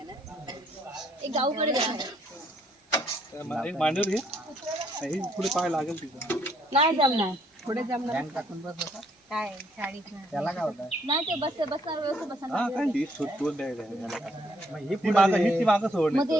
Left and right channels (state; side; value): normal; both; correlation 0.68